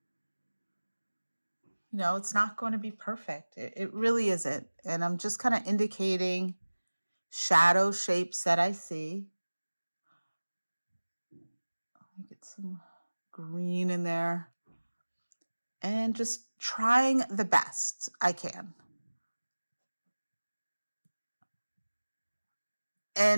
It's not going to be perfect. It really isn't. And I'm just kind of indicating shadow shapes that I see. Let me get some green in there. And just trying the best I can.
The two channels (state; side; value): inverted; both; correlation -1.00